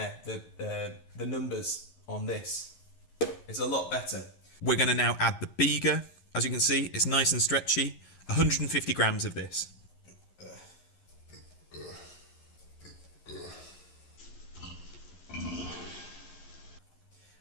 the numbers on this. It's a lot better. We're going to now add the Biga. As you can see, it's nice and stretchy. 150 grams of this.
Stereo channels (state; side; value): late; right; 11 ms